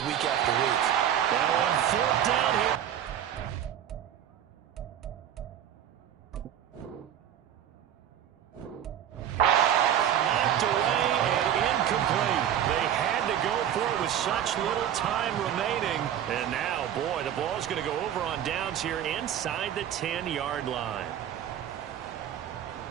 week after week. Now on 4th down here. Such little time remaining. And now, boy, the ball's going to go over on downs here inside the 10-yard line.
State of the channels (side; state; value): left; quieter; 10.2 dB